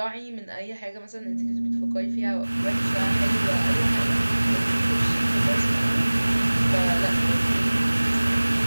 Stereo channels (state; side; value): inverted; both; correlation -1.00